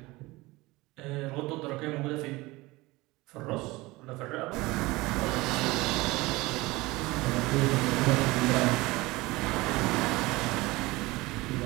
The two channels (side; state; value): left; quieter; 21.2 dB